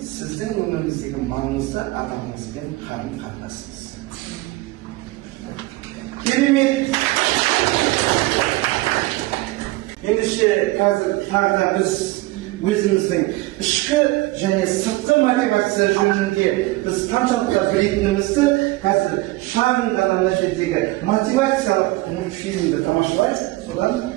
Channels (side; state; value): left; quieter; 20.2 dB